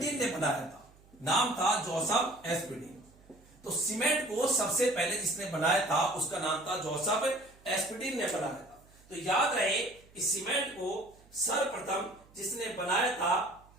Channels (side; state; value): right; noise; hum, 27 dB below the sound